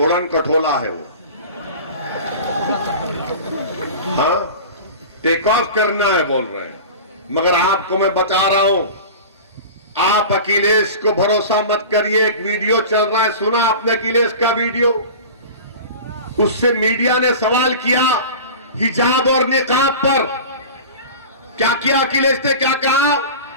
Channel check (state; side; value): inverted; both; correlation -0.35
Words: कठोला है वो। हाँ, टेक ऑफ करना है बोल रहे हैं, मगर आपको मैं बता रहा हूं, आप अखिलेश को भरोसा मत करिए। एक वीडियो चल रहा है, सुना आपने अखिलेश का वीडियो? उससे मीडिया ने सवाल किया हिजाब और निकाब पर। क्या किया अखिलेश ने? क्या कहा?